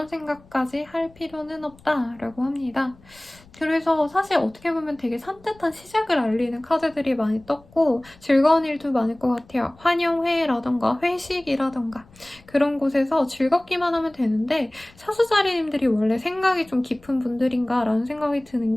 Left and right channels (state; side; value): noise; left; rumble, 27 dB below the sound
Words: 생각까지 할 필요는 없다라고 합니다. 그래서 사실 어떻게 보면 되게 산뜻한 시작을 알리는 카드들이 많이 떴고 즐거운 일도 많을 것 같아요. 환영회라던가 회식이라던가 그런 곳에서 즐겁기만 하면 되는데 사수자리님들이 원래 생각이 좀 깊은 분들인가 라는 생각이 드는